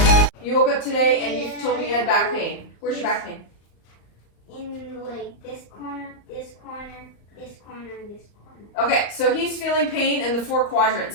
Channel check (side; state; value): right; late; 35 ms